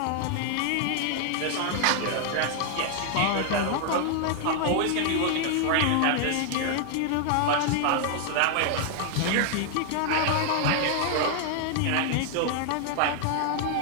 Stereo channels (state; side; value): different; both; correlation 0.00